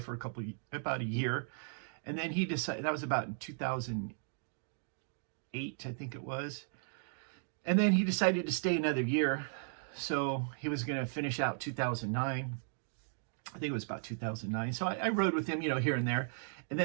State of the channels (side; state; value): left; silent; digital silence